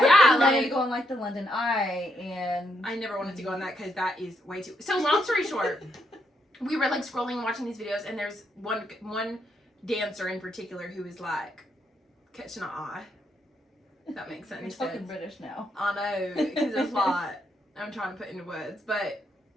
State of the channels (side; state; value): both; normal; correlation 0.77